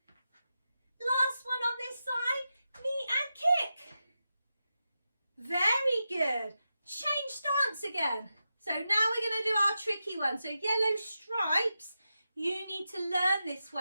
Last one on this side, knee and kick. Very good. Change stance again. So now we're going to do our tricky one. So yellow stripes, you need to learn this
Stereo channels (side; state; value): both; inverted; correlation -0.90